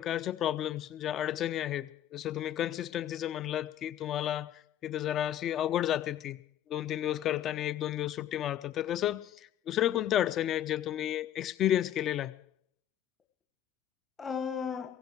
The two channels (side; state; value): right; quieter; 11.3 dB